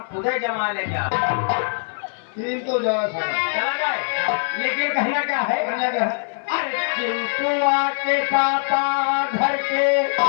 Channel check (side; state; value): right; silent; 64 dB below the other